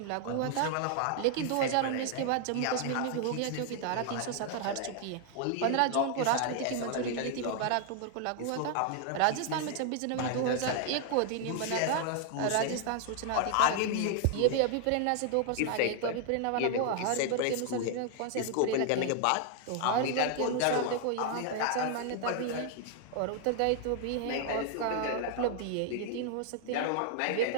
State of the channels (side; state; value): both; different; correlation 0.00